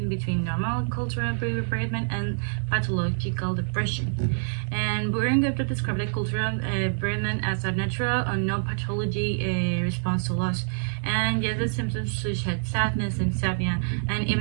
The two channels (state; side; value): silent; left; digital silence